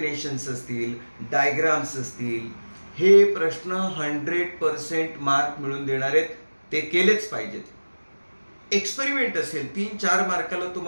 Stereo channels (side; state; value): both; inverted; correlation -1.00